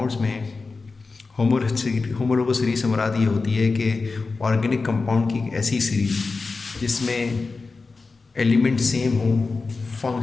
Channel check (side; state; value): right; quieter; 4.1 dB